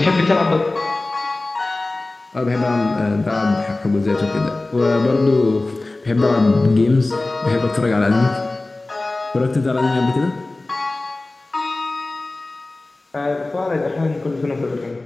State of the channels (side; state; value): right; quieter; 3.0 dB